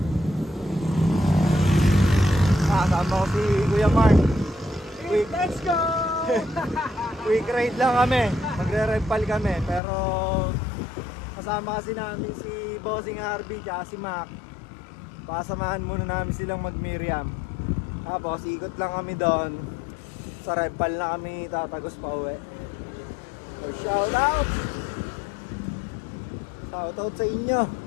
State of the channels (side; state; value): right; drops out; at 9.8 s